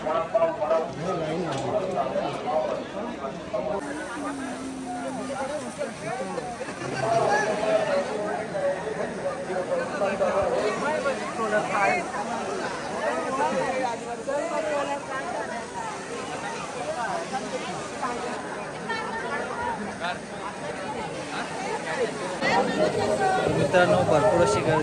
मित्रांनो भरपूर अशी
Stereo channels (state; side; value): identical; both; correlation 1.00